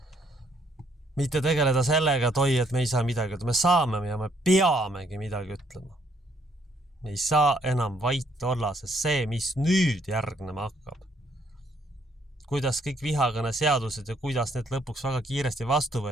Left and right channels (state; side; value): normal; both; correlation 0.69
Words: Mitte tegeleda sellega, et me ei saa midagi, me saame ja me peamegi midagi ütlema. Me ei saa enam vait olla, sest see, mis nüüd järgnema hakkab. Kuidas kõik vihakõne seadused ja kuidas need lõpuks väga kiiresti vastu